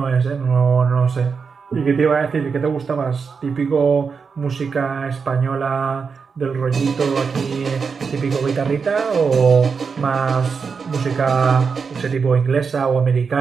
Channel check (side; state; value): left; quieter; 5.5 dB